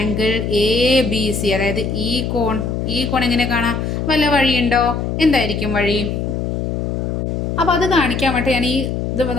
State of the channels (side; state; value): left; noise; hum, 2 dB below the sound